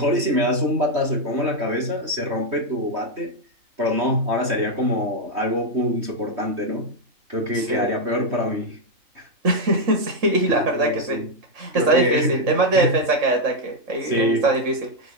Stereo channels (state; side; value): late; left; 3.2 ms